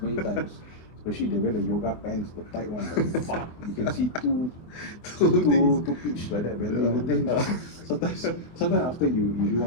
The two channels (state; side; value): late; right; 24 ms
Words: many times. Especially they wear the yoga pants, the tight one. Like, you can see two pitch like that. But then sometimes after you do